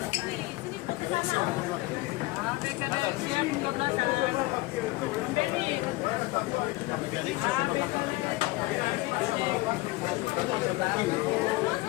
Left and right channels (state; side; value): quieter; right; 21.1 dB